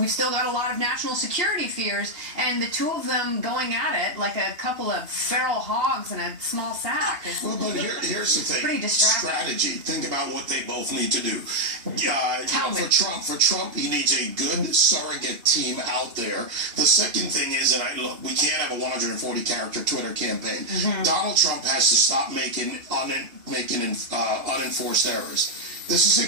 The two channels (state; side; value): late; left; 2.9 ms